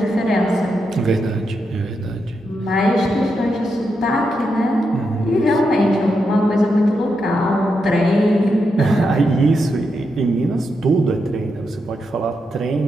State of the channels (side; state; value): both; normal; correlation 0.84